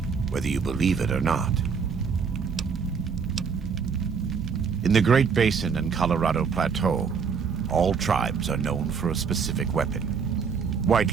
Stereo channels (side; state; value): left; quieter; 6.0 dB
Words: whether you believe it or not. In the Great Basin and Colorado Plateau, all tribes are known for a specific weapon.